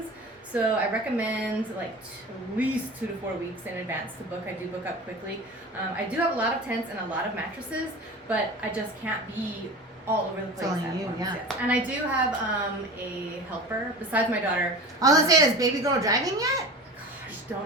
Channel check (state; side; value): normal; both; correlation 0.34